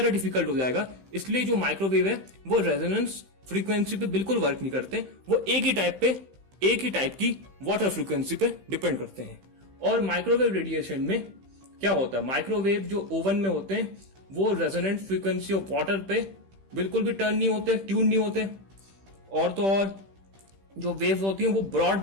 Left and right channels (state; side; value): late; left; 15 ms